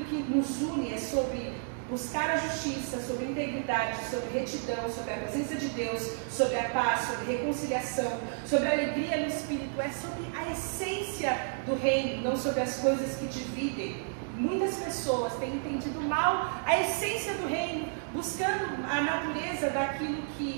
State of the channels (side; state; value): left; silent; digital silence